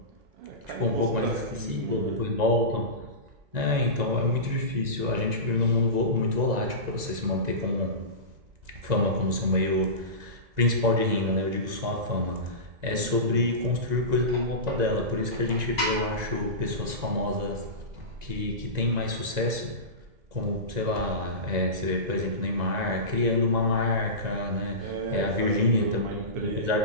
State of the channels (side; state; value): left; late; 1.9 ms